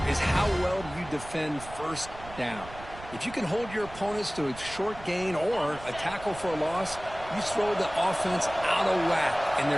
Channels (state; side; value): noise; right; rumble, 15 dB below the sound